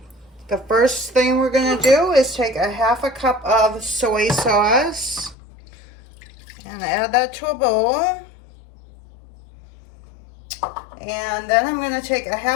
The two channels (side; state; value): right; drops out; at 5.4 s